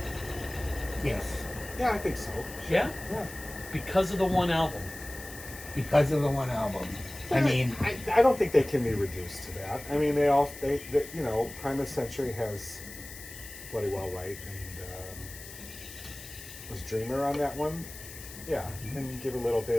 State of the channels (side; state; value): left; noise; hiss, 14 dB below the sound